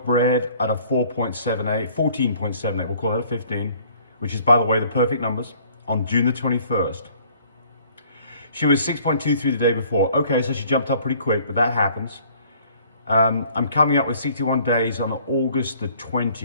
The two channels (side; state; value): both; inverted; correlation -0.56